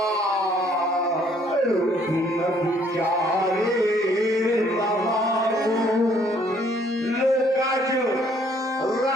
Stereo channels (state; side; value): normal; both; correlation 0.63